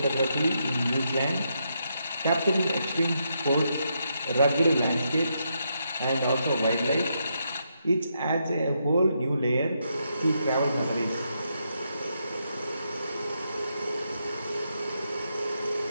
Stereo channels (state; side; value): inverted; both; correlation -0.80